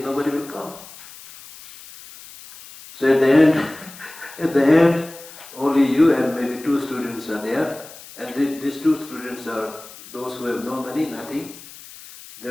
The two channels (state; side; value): noise; left; hiss, 18 dB below the sound